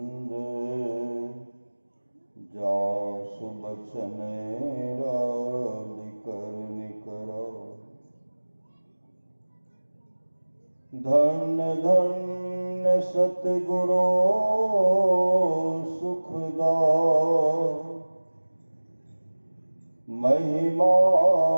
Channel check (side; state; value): both; inverted; correlation -1.00